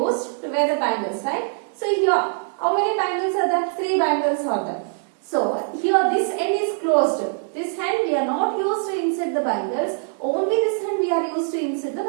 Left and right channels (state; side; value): silent; left; 64 dB below the other